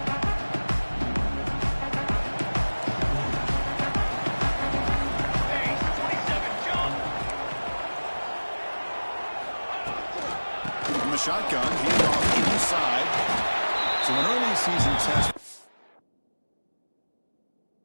Shotgun, hand off inside. So an early season test.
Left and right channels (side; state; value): both; inverted; correlation -1.00